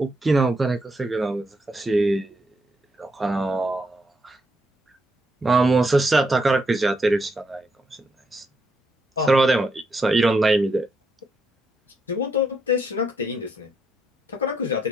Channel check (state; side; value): normal; both; correlation 0.78